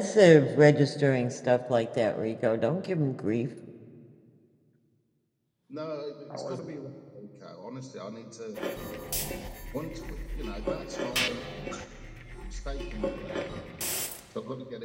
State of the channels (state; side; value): identical; both; correlation 1.00